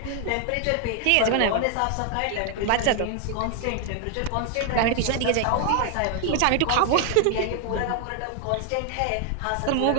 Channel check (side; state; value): both; different; correlation 0.00